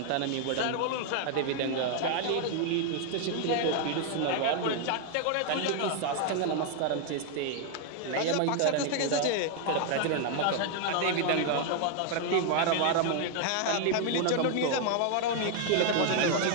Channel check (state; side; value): different; both; correlation 0.00